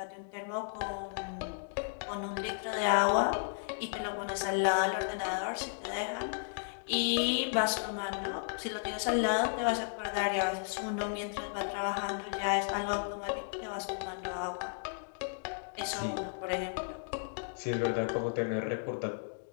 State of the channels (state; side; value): silent; right; digital silence